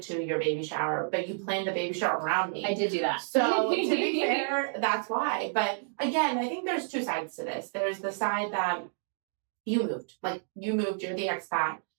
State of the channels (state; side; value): silent; left; digital silence